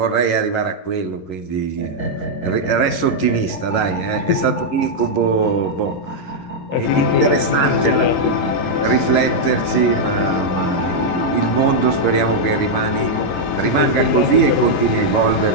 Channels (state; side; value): late; right; 11 ms